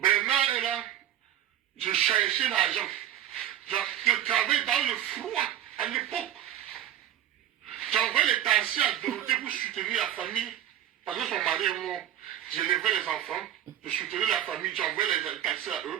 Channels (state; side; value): quieter; left; 11.7 dB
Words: est là. Je cherchais l'argent. Je travaillais dans le froid à l'époque. J'envoyais les taxis à Dorothée pour soutenir la famille. Parce que son mari est mort. J'élevais les enfants. Je soutenais la famille. J'envoyais les taxis à